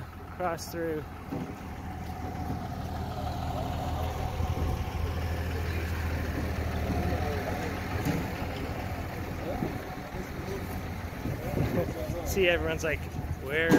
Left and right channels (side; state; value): both; identical; correlation 1.00